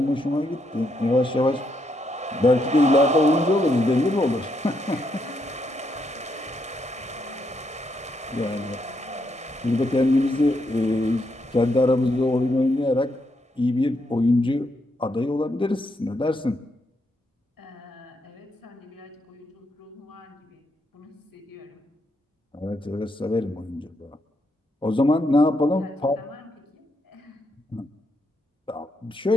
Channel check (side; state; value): both; normal; correlation 0.78